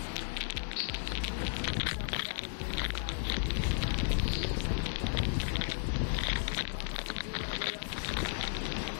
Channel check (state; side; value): silent; right; digital silence